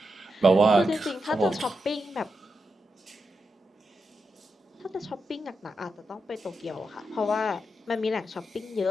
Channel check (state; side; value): normal; both; correlation 0.86